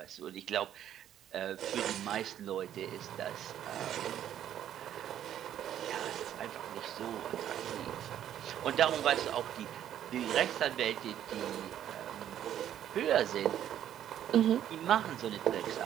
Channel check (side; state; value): left; quieter; 10.8 dB